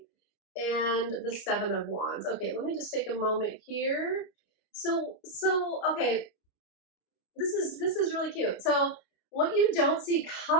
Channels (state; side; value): late; right; 30 ms